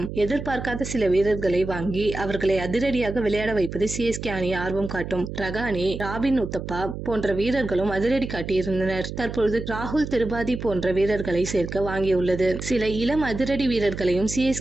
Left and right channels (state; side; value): noise; right; hum, 8 dB below the sound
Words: எதிர்பார்க்காத சில வீரர்களை வாங்கி அவர்களை அதிரடியாக விளையாட வைப்பது சிஎஸ்கே அணி ஆர்வம் காட்டும். ரகானே, ராபின் உத்தப்பா போன்ற வீரர்களும் அதிரடி காட்டியிருந்தனர். தற்பொழுது ராகுல் திரிபாதி போன்ற வீரர்களை சேர்க்க வாங்கியுள்ளது. சில இளம் அதிரடி வீரர்களையும்